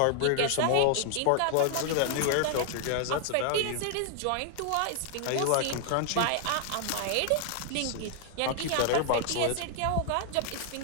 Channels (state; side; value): different; both; correlation 0.00